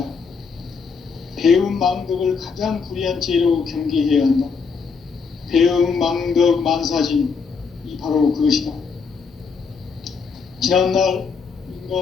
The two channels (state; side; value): quieter; right; 5.3 dB